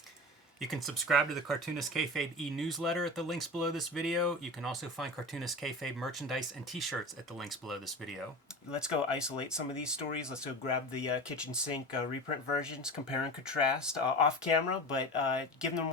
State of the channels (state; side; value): normal; both; correlation 0.30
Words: you can subscribe to the Cartoonist Kayfabe e-newsletter at the links below this video. You can also find Cartoonist Kayfabe merchandise and t-shirts at the links below this video. Let's go isolate some of these stories. Let's go grab the kitchen sink reprint versions, compare and contrast off camera, but give them